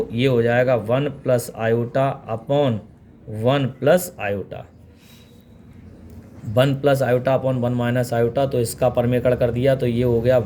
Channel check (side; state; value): both; identical; correlation 1.00